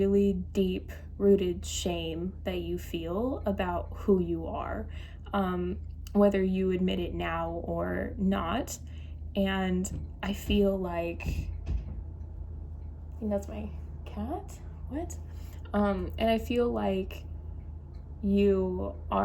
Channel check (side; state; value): both; identical; correlation 1.00